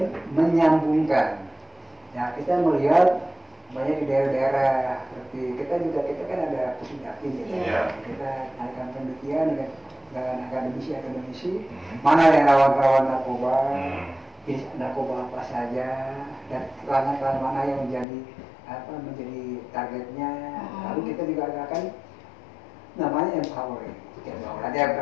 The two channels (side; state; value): right; drops out; at 18.1 s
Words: menyambungkan. Ya kita melihat banyak di daerah-daerah seperti kita kan ada pusdakti gitu. Kita adakan penelitian dengan akademisi mana yang rawan-rawan narkoba, jenis narkoba apa saja dan pelanggan mana yang menjadi targetnya. Lalu kita juga akan namanya empowering. Ada